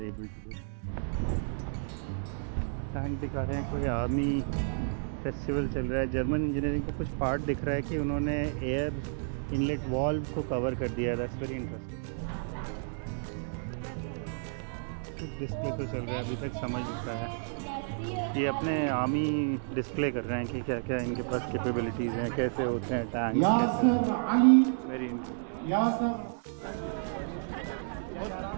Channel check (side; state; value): left; silent; digital silence